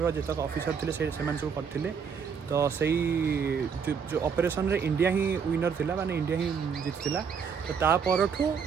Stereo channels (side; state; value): left; quieter; 6.5 dB